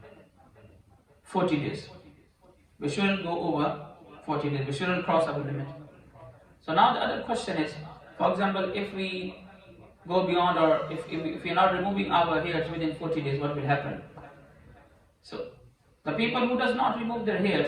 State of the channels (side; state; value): both; identical; correlation 1.00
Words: 40 days. We shouldn't go over 40 days. We shouldn't cross our limit. So now the other question is, for example, if we go beyond, or if we are not removing our hairs within 40 days, what will happen? So the people who does not remove their